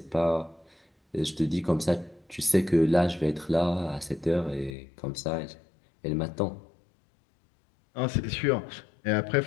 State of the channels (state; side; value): drops out; right; at 4.7 s